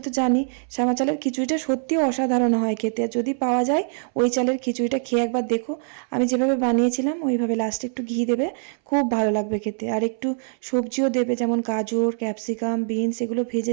তো জানি শ্যামা চালের খিচুড়িটা সত্যিও অসাধারণ হয় খেতে। যদি পাওয়া যায় ওই চালের খিচুড়িটা খেয়ে একবার দেখো, আমি যেভাবে বানিয়েছিলাম ওইভাবে লাস্টে একটু ঘি দেবে, খুব ভালো লাগবে খেতে। আর একটু সবজিও দেবে, যেমন গাজর, ক্যাপসিকাম, বিনস, এগুলো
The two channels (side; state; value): left; silent; 63 dB below the other